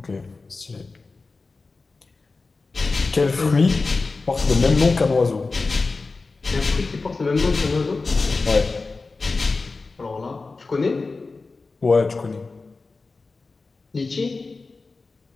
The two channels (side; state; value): right; quieter; 3.9 dB